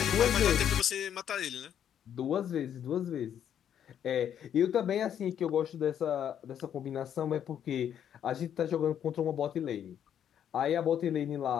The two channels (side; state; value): right; quieter; 9.4 dB